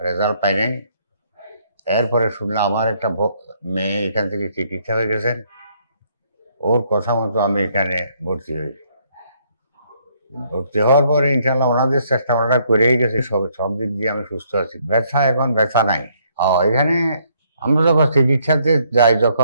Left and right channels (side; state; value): both; inverted; correlation -0.69